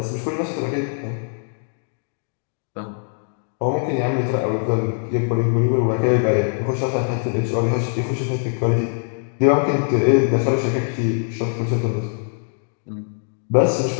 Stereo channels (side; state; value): right; silent; 62 dB below the other